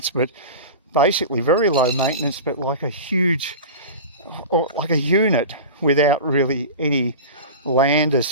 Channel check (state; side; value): inverted; both; correlation -0.31